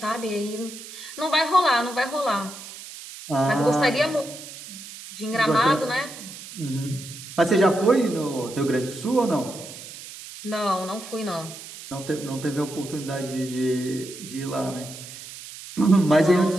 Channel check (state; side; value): noise; right; hiss, 14 dB below the sound